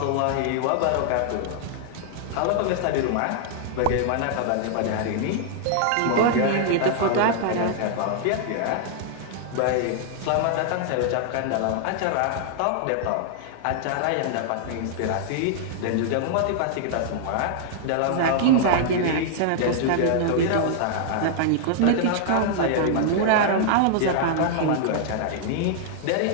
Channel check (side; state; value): both; different; correlation -0.01